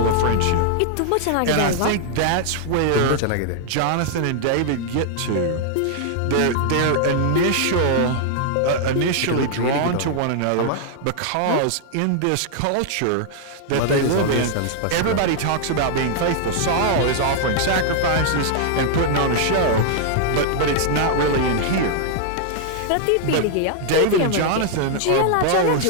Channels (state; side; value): different; both; correlation -0.01